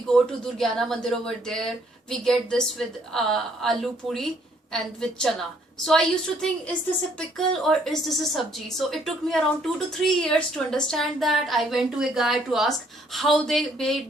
go to Durgyana Mandir over there, we get this with aloo puri and with chana. So I used to think, is this a pickle or is this a sabji? So it took me around 2 to 3 years to understand that. I went to a guy to ask how they made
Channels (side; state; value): both; normal; correlation 0.66